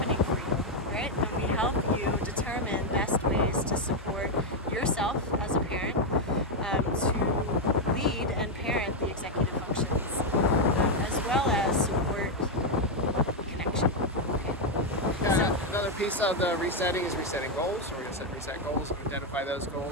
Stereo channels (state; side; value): normal; both; correlation 0.02